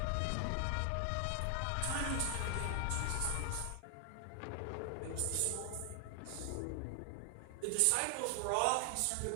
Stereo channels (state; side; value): different; both; correlation 0.00